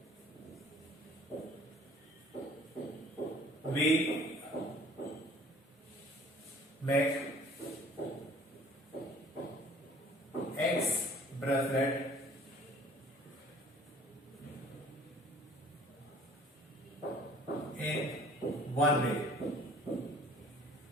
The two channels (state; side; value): normal; both; correlation 0.53